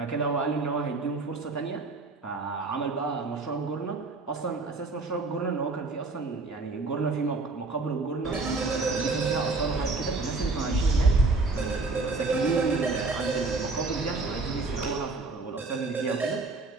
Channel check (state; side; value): quieter; left; 3.7 dB